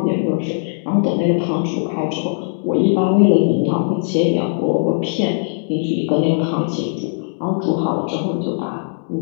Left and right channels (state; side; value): silent; right; digital silence